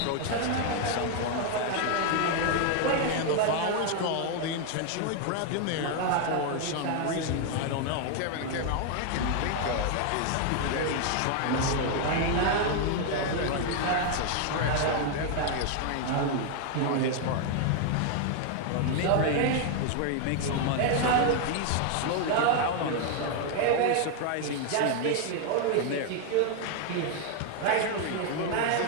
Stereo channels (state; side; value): different; both; correlation 0.00